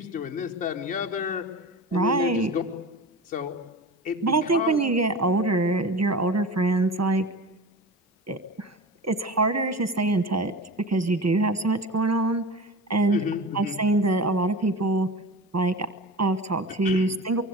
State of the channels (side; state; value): both; normal; correlation 0.32